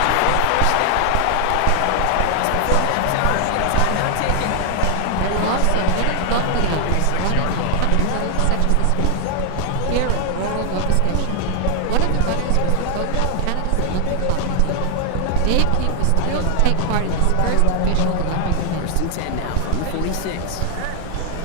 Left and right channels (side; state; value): both; different; correlation 0.00